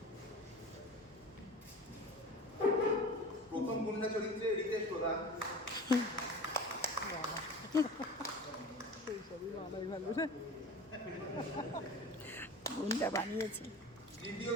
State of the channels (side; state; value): both; normal; correlation 0.36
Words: প্রথম গুন্ডা চরিত্রে রিতেশ প্রধান, গুন্ডা বানিয়েছি। দ্বিতীয়